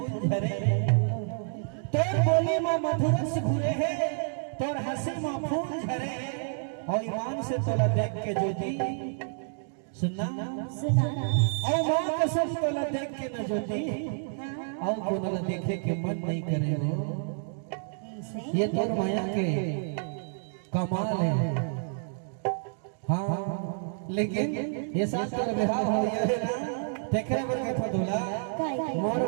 झरे तोर बोली माँ मथुरा से घुरे है तोर हंसी माँ फूल झरे और ईमान से तोला देख के ज्योति सुना और माँ कसम तोला देख के न ज्योति और कोनला देखे के मन नहीं करे हो ये तोर माया के कमाल है। हाँ लेकिन ये साथ तोर विवाह हो गया है ना देखरे बर के था दूल्हा मोर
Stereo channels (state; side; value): silent; left; digital silence